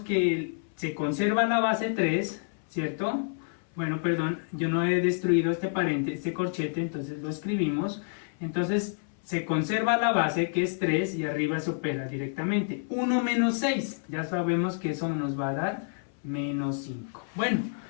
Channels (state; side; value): silent; right; 59 dB below the other